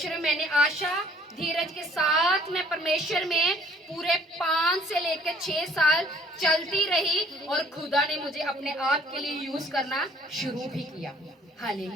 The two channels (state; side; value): normal; both; correlation 0.57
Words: में मैंने आशा, धीरज के साथ मैं परमेश्वर में पूरे 5 से लेकर 6 साल चलती रही और खुदा ने मुझे अपने आप के लिए यूज करना शुरू भी किया।